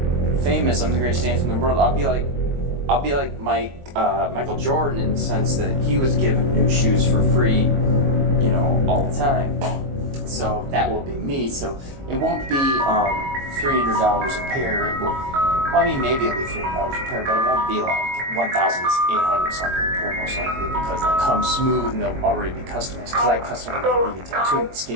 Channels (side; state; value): left; late; 22 ms